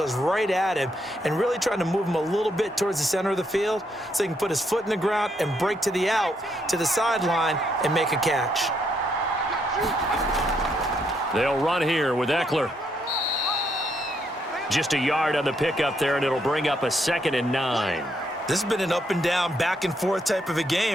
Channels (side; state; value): both; normal; correlation 0.75